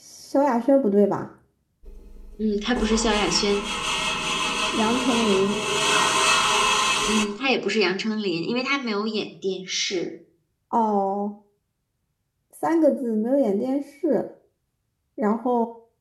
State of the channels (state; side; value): identical; both; correlation 1.00